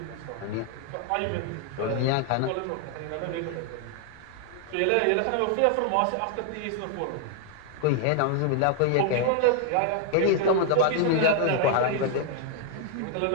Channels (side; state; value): both; different; correlation 0.00